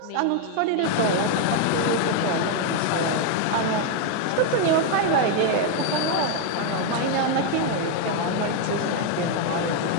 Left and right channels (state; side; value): different; both; correlation 0.01